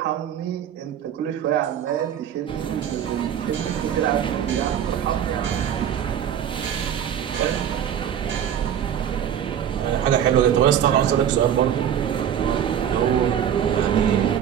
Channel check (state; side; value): quieter; left; 9.4 dB